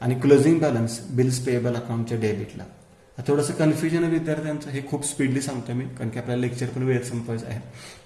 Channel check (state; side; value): identical; both; correlation 1.00